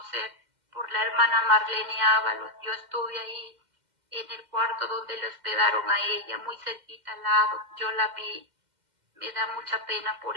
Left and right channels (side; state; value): left; late; 2.1 ms